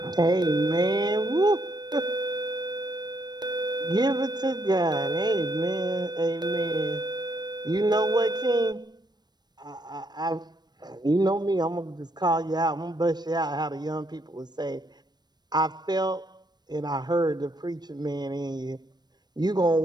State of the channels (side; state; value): left; late; 0.20 ms